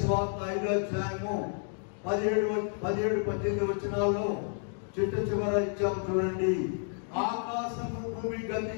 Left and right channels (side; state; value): right; silent; 57 dB below the other